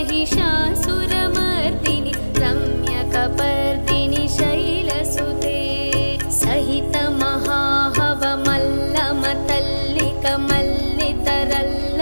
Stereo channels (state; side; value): inverted; both; correlation -1.00